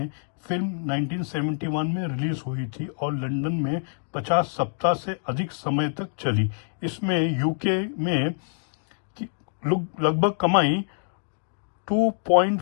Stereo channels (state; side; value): silent; right; digital silence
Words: फिल्म 1971 में रिलीज हुई थी और लंदन में 50 सप्ताह से अधिक समय तक चली। इसमें यूके में लगभग कमाई